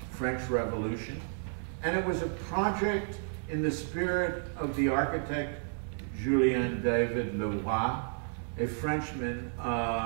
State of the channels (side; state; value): left; silent; 56 dB below the other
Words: French Revolution, and it was a project in the spirit of the architect Julien David Leroy, a Frenchman